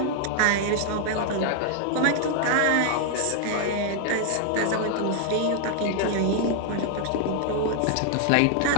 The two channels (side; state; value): both; different; correlation 0.00